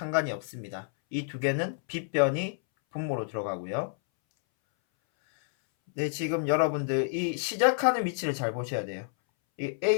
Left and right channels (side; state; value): right; silent; 59 dB below the other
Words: 없습니다. 이 두 개는 빗변이 분모로 들어가고요. 네, 지금 여러분들 이 시작하는 위치를 잘 보셔야 돼요. 이